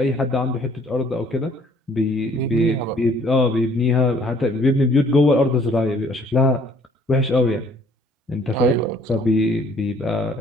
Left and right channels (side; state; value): both; normal; correlation 0.59